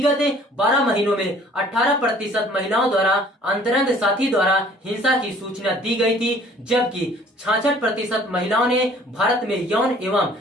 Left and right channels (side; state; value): both; normal; correlation 0.54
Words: 12 महीनों में 18% महिलाओं द्वारा अंतरंग साथी द्वारा हिंसा की सूचना दी गई थी, जबकि 66% महिलाओं ने भारत में यौन एवं